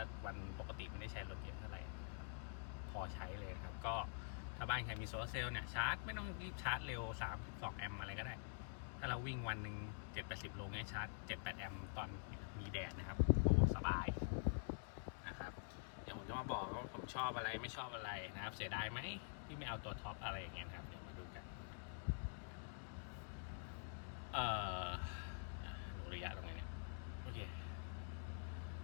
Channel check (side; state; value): right; silent; digital silence